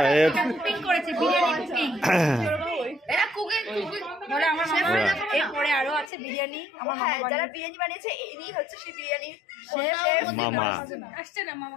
কুকিং করেছে, বিরিয়ানি কুকিং। এটা কুকিং বলে আমার মামা। এরপরে আরো আছে বিরিয়ানি। আমার হ্যাঁ, মামা যারা বিরিয়ানি বানিয়েছে ইনি হচ্ছে সেই বিরিয়ানি মামা। আসছে না মামা,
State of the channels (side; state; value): right; drops out; at 6.1 s